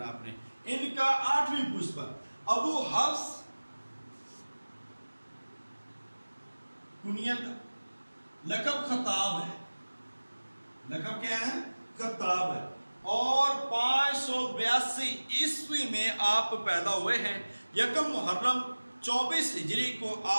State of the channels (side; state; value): both; inverted; correlation -1.00